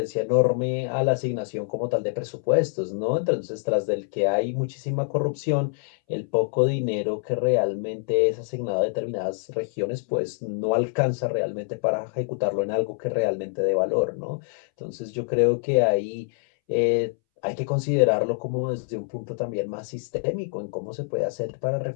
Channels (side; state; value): right; silent; 61 dB below the other